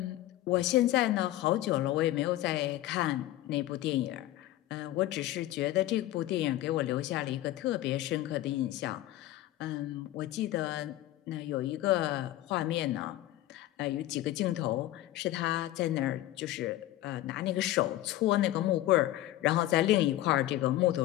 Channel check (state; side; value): quieter; right; 15.0 dB